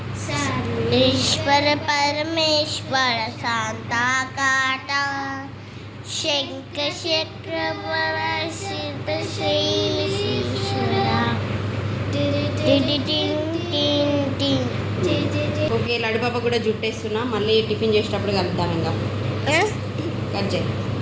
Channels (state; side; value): identical; both; correlation 1.00